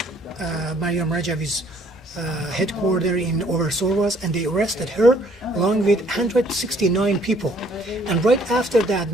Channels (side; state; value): both; normal; correlation 0.62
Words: Mariam Rajavi's headquarters in Oversorwas, and they arrested her along with 169 people. And right after that,